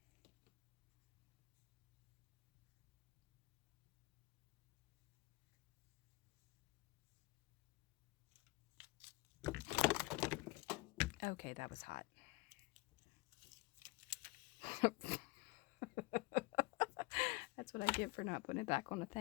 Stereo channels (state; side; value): quieter; right; 22.9 dB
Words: Okay, that was hot. That's what I get for not putting it back on the